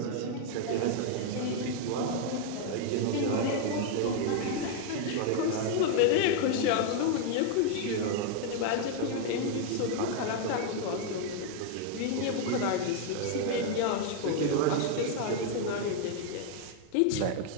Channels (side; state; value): both; different; correlation 0.00